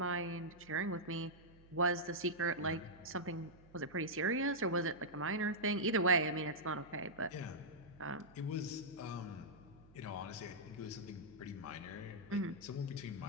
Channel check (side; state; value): right; noise; hum, 24 dB below the sound